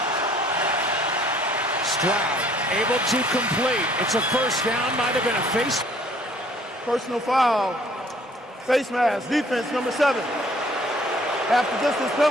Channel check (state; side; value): normal; both; correlation 0.58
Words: Stroud able to complete. It's a first down. Might have been a face. Personal foul. Face mask. Defense number 7. After distance